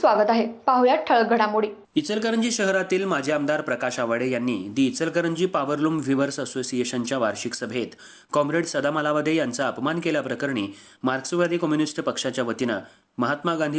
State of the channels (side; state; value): both; identical; correlation 1.00